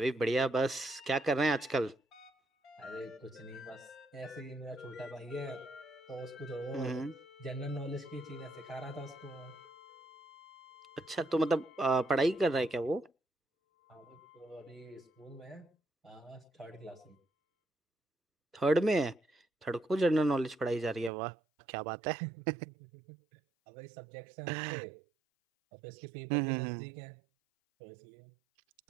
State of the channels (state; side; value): drops out; left; at 21.1 s